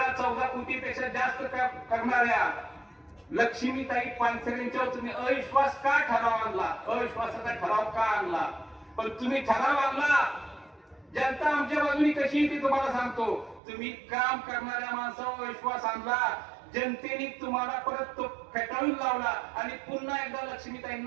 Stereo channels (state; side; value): drops out; left; at 13.6 s